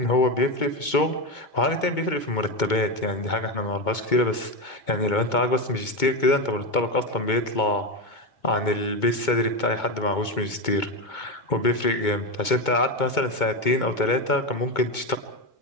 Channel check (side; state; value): right; late; 2.2 ms